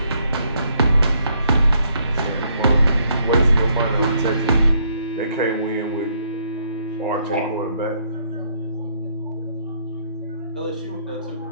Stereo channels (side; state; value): both; inverted; correlation -0.70